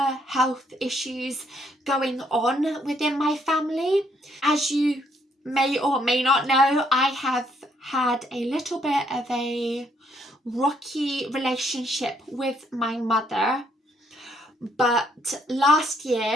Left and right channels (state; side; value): normal; both; correlation 0.70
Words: health issues going on within my family. As you may or may not know, I have had a little bit of a rocky relationship with my mother. But last